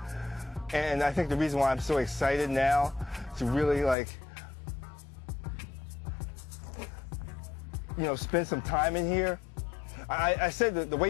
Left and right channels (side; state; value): right; drops out; at 4.0 s